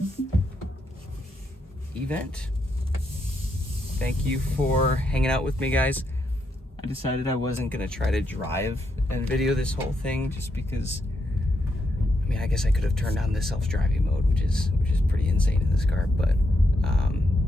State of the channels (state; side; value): normal; both; correlation 0.80